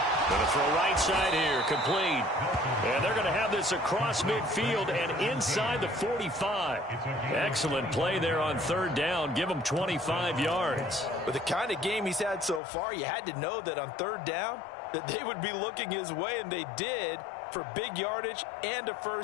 Going to throw right side here, complete. And they're going to have this across midfield and inside the 45. Excellent play there on 3rd down. Give him 25 yards. With the kind of game he's had so far, you had to know that on 3rd down that they would be looking his way, and they did, for big yardage and a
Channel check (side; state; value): right; drops out; at 12.6 s